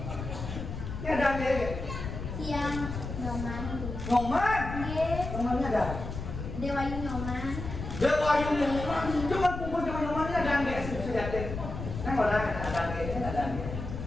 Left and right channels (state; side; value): noise; left; rumble, 7 dB below the sound